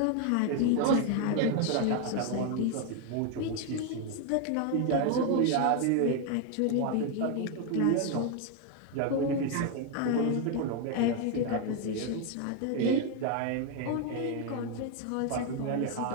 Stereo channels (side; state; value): both; different; correlation 0.01